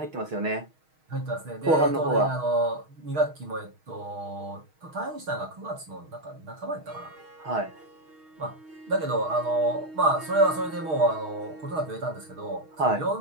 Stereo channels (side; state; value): left; late; 6.4 ms